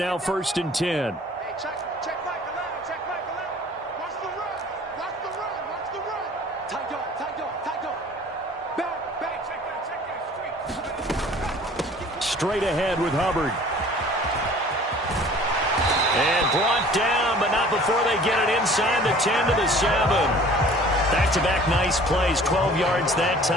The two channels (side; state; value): both; normal; correlation 0.49